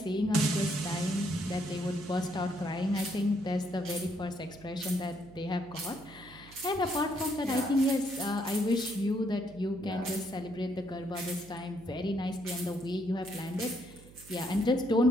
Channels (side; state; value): right; noise; hum, 20 dB below the sound